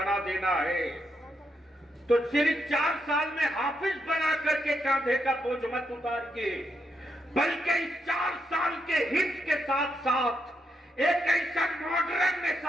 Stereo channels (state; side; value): normal; both; correlation 0.81